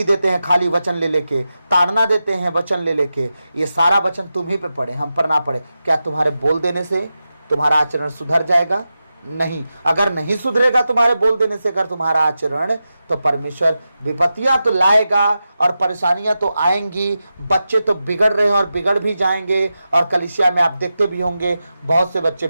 देते हैं खाली वचन ले लेके, ताड़ना देते हैं वचन ले लेके। ये सारा वचन तुम ही पे पड़े, हम पर ना पड़े। क्या तुम्हारे बोल देने से तुम्हारा आचरण सुधर जाएगा? नहीं। अगर नहीं सुधरेगा तुम्हारे बोल देने से अगर तुम्हारा आचरण, तो परमेश्वर विपत्तियां तो लाएगा और परेशानियां तो आएंगी। बच्चे तो बिगड़ रहे हैं और बिगड़ भी जाएंगे, और कलीसिया में आप देखते भी होंगे बहुत से बच्चे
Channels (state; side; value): inverted; both; correlation -0.91